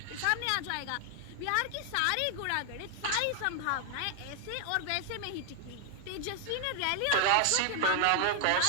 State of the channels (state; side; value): different; both; correlation 0.00